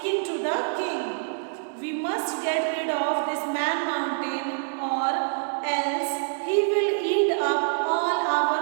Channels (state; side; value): silent; left; 61 dB below the other